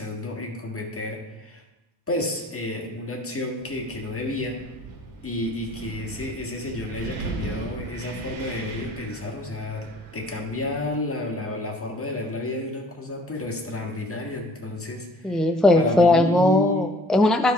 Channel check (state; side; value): normal; both; correlation 0.54